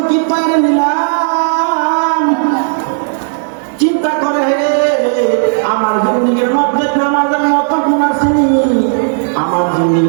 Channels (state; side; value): silent; left; digital silence